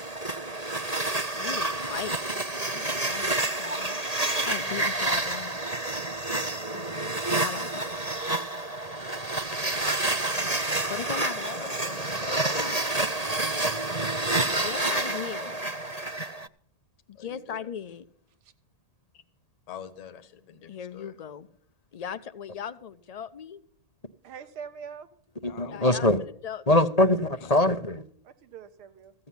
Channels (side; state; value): right; late; 1.8 ms